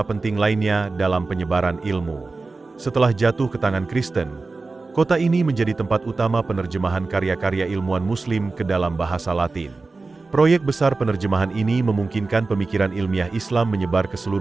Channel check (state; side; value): quieter; left; 3.8 dB